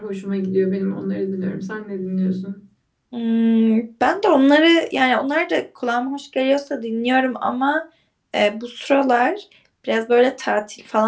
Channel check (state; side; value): identical; both; correlation 1.00